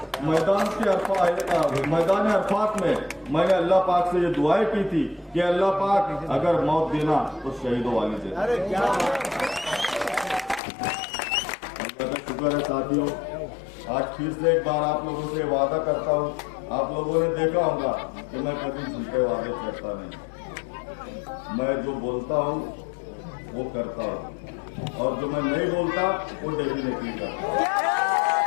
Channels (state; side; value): drops out; right; at 10.6 s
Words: मैदान अरफात में मैंने अल्लाह पाक से ये दुआएं की थी कि अल्लाह पाक अगर मौत देना तो शहीदों वाली दे। अल्लाह का शुक्र है साथियों, आज फिर से एक बार आप लोगों से वादा करता हूँ, आप लोगों ने देखा होगा कि मैं कभी झूठे वादे करता नहीं, मैं जो बोलता हूँ वो करता हूँ और जो मैं नहीं बोलता वो डेफिनेटली करता।